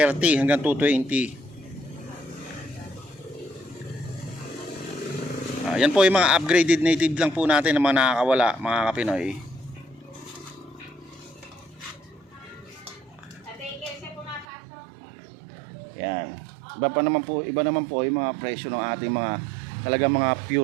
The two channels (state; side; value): drops out; left; at 14.5 s